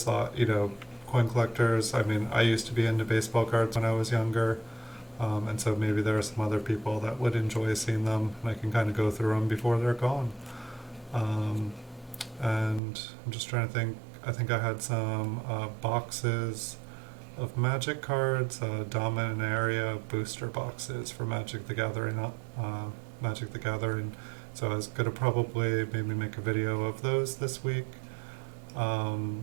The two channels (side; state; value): left; drops out; at 12.8 s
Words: thought, coin collectors, I mean, I used to be into baseball cards when I was younger. And so maybe there are some other people that would enjoy seeing them, and I can kind of go through them before they're gone. Um, and I'm just trying to think. I think I had some boxes of Magic cards, dominant area booster boxes for Magic the Gathering. Magic the Gathering. So I was gonna probably maybe make a video of those this week,